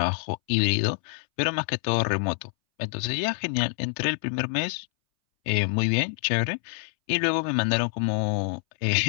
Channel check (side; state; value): right; silent; 61 dB below the other